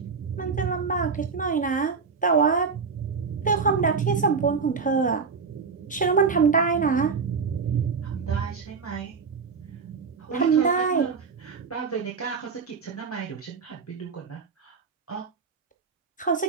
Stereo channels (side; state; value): left; quieter; 5.3 dB